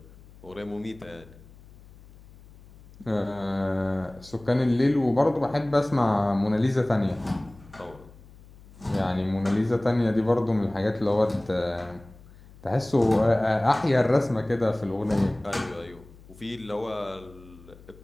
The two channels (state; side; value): noise; left; hum, 22 dB below the sound